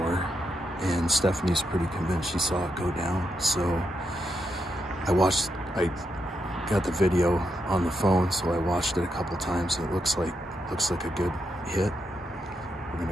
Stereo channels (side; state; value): both; normal; correlation 0.83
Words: and Stephanie's pretty convinced she saw it go down. So I got the video on the phone, so I watched it a couple times. It looks like a good hit. We're